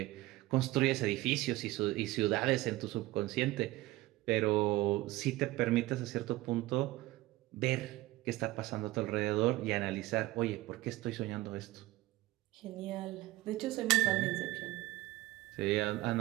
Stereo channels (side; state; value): left; quieter; 18.2 dB